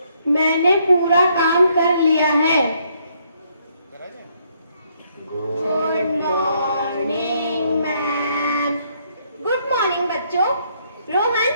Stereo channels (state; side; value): inverted; both; correlation -0.71